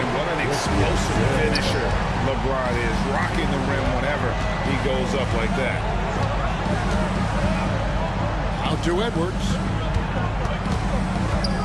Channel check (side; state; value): both; identical; correlation 1.00